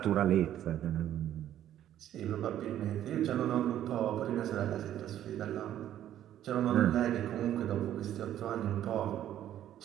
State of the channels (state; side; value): quieter; left; 11.6 dB